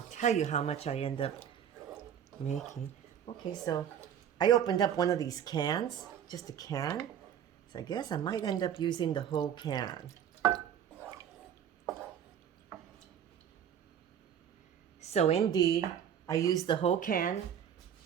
tell you how much I end up making. Okay, so I opened up one of these cans, just a can. So I guess I might end up using the whole can. So indeed, I used the whole can.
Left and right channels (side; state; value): left; quieter; 9.1 dB